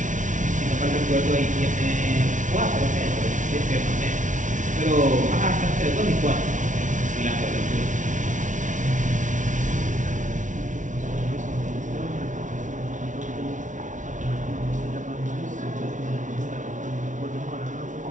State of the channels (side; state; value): left; late; 0.37 ms